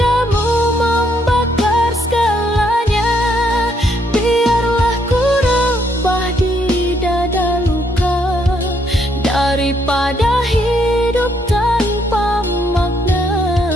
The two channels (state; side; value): normal; both; correlation 0.72